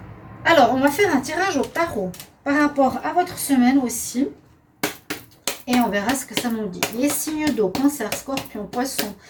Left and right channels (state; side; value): identical; both; correlation 1.00